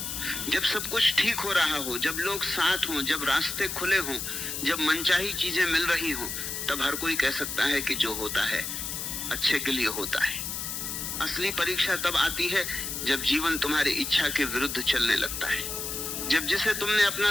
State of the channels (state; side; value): noise; left; hiss, 4 dB below the sound